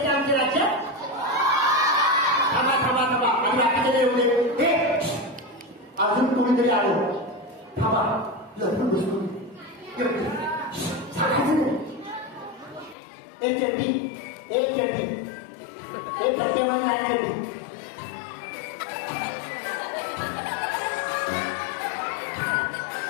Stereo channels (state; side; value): drops out; right; at 13.0 s